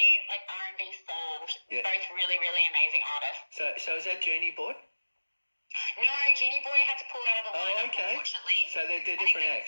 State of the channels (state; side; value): inverted; both; correlation -1.00